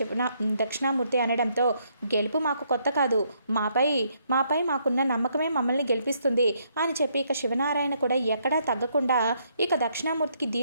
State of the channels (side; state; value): both; inverted; correlation -0.72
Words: దక్షిణామూర్తి అనడంతో, గెలుపు మాకు కొత్త కాదు, మాపై మాకున్న నమ్మకమే మమ్మల్ని గెలిపిస్తుంది అని చెప్పి శివనారాయణ కూడా ఎక్కడా తగ్గకుండా దక్షిణామూర్తికి